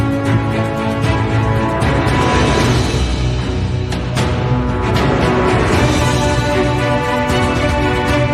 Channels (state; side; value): identical; both; correlation 1.00